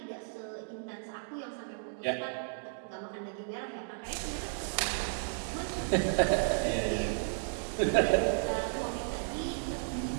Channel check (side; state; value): left; silent; digital silence